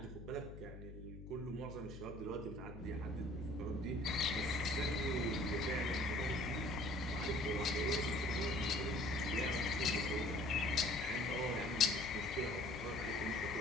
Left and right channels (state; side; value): noise; left; hum, 12 dB below the sound